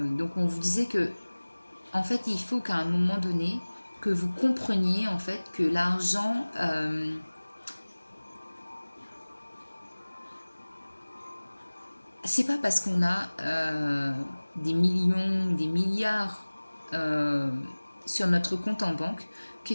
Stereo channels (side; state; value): both; inverted; correlation -1.00